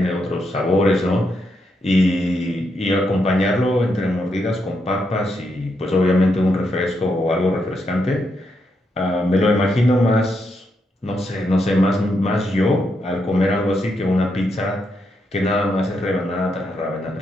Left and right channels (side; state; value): both; normal; correlation 0.81